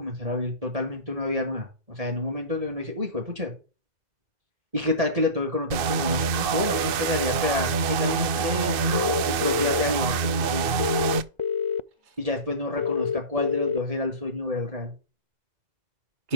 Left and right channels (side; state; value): left; late; 2.0 ms